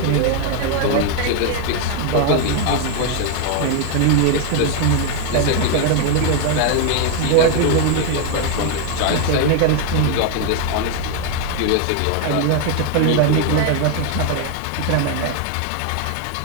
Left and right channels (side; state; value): both; different; correlation 0.01